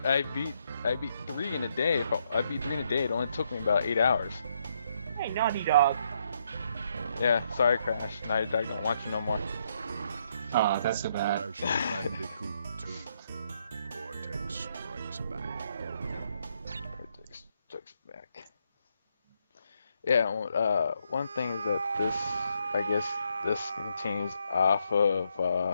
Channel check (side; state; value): both; inverted; correlation -0.75